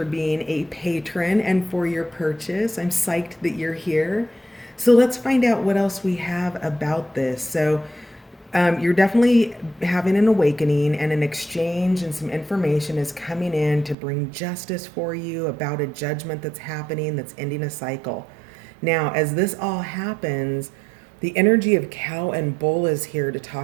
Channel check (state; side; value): drops out; left; at 14.0 s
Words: being a patron and for your purchase. I'm psyched that you're here. So let's find out what else we have about this. You're definitely having an awakening, and an exchange and some information is coming in to bring justice for you about a judgment that's happening that's ending a cycle. Now, as this all happens, the energy of cow and bull is here to